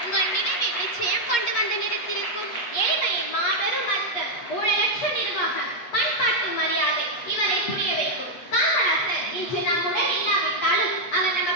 உங்கள் நினைவில் நிச்சயம் கொண்டு வந்து நிறுத்திருக்கும். ஏழ்மையின் மாபெரும் அர்த்தம், ஊழலற்ற நிர்வாகம், பண்பாட்டு மரியாதை இவரை புரிய வைக்கும். காமராஜர் இன்று நம்முடன் இல்லாவிட்டாலும் அவர்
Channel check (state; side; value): late; right; 8.4 ms